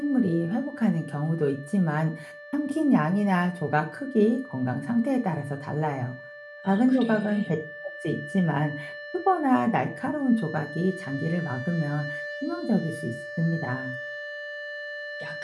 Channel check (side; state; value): both; identical; correlation 1.00